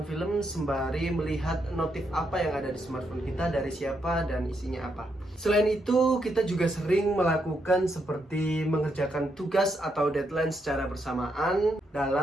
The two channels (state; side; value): normal; both; correlation 0.79